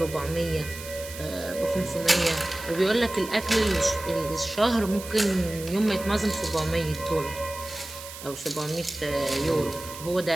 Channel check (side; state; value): right; noise; hiss, 13 dB below the sound